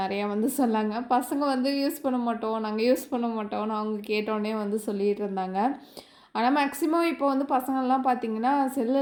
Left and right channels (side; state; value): both; identical; correlation 1.00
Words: வந்து சொன்னாங்க. பசங்க வந்து யூஸ் பண்ண மாட்டோம், நாங்கள் யூஸ் பண்ண மாட்டோம்னு அவங்க கேட்டோன்னே வந்து சொல்லிகிட்டு இருந்தாங்க. ஆனால் மேக்ஸிமம் இப்போ வந்து பசங்கள்லாம் பார்த்திங்கன்னா செல்